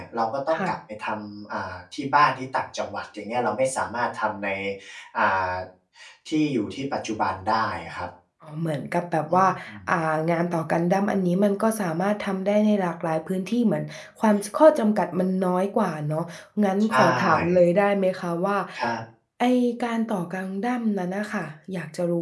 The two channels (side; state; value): both; identical; correlation 1.00